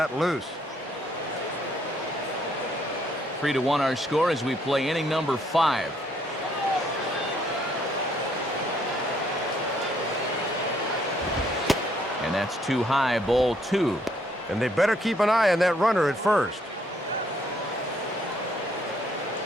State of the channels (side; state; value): both; normal; correlation 0.68